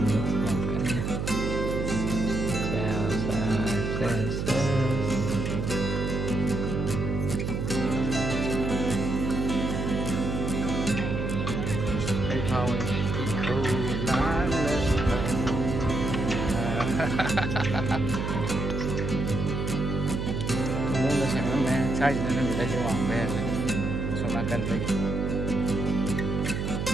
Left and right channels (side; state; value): right; noise; hum, 2 dB below the sound